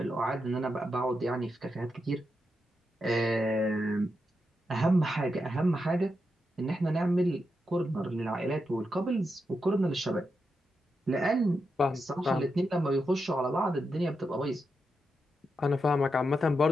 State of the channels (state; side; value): normal; both; correlation 0.86